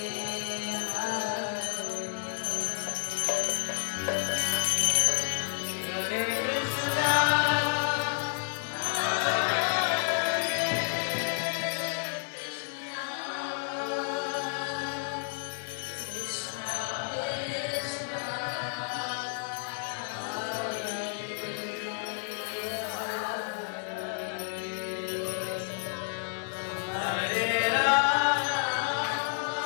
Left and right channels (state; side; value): silent; right; 57 dB below the other